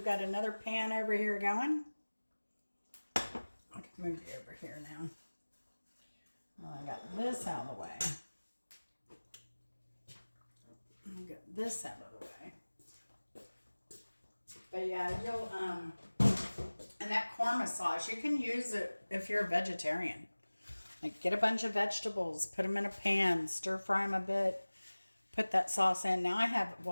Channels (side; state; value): both; inverted; correlation -1.00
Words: got another pan over here going. I can move you over here now. Well, I got this out of the way. I got this out of the way. But yeah, you'll and that korma sauce, you can use it if you're a vegetarian. Like get a bunch of vegetables, put them in a pan, stir fry them a bit, put that sauce in. Now I have